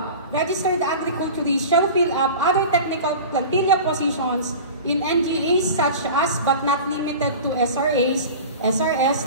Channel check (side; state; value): both; inverted; correlation -0.35